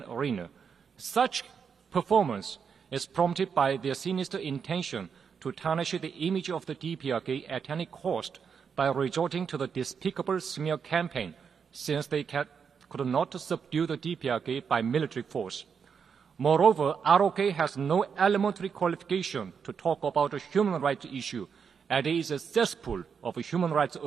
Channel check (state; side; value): quieter; left; 6.5 dB